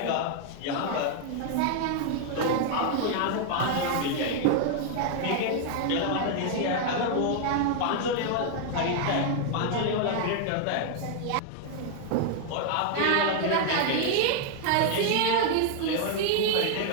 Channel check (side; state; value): both; different; correlation 0.00